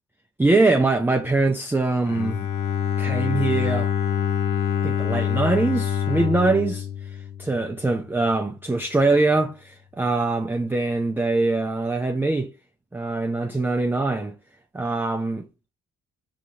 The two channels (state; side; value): normal; both; correlation 0.76